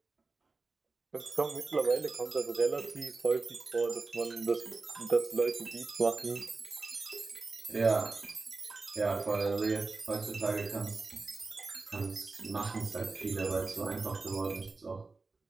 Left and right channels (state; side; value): quieter; left; 3.8 dB